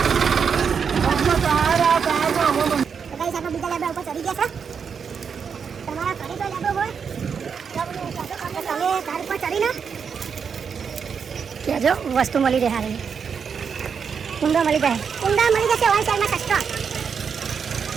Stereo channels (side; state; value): left; quieter; 6.5 dB